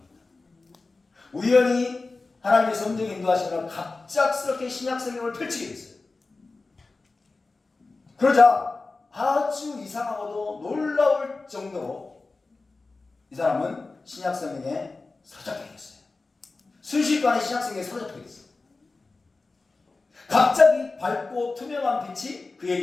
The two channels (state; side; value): quieter; right; 3.7 dB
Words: 우연히 하나님의 섭리적인 인도하심으로 갑작스럽게 신약성경을 펼치게 됐어요. 그러자 아주 이상하고도 놀라울 정도로 이 사람은 신약성경에 사로잡히게 됐어요. 순식간에 신약성경에 사로잡히게 됐어요. 갑자기 밝고 투명한 빛이